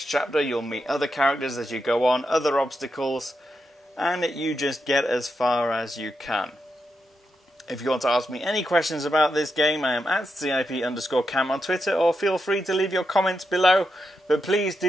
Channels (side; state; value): both; normal; correlation 0.85